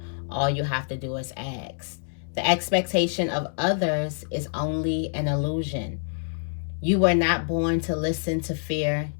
All you have to do is ask. The expectation of others is only an illusion. You were not born to listen to fear.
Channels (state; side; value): silent; right; 61 dB below the other